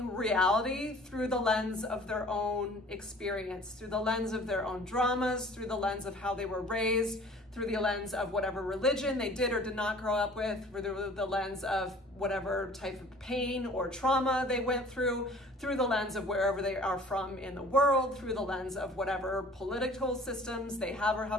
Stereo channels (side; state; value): both; normal; correlation 0.49